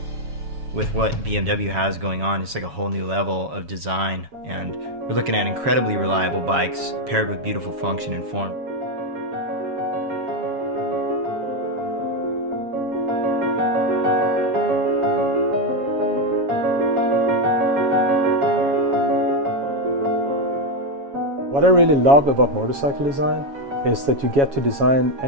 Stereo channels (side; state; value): left; late; 7.2 ms